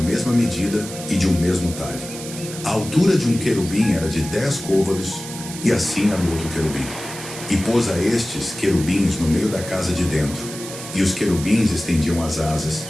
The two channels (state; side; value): noise; right; hiss, 11 dB below the sound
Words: mesma medida e de um mesmo talhe. A altura de um querubim era de 10 côvados, e assim a do outro querubim. E pôs a estes querubins no meio da casa de dentro, e os querubins estendiam as asas,